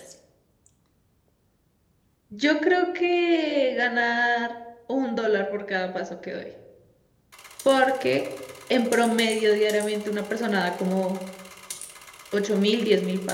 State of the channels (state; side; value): identical; both; correlation 1.00